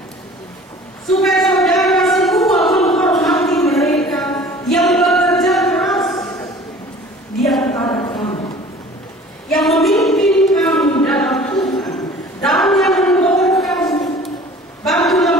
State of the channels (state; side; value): normal; both; correlation 0.46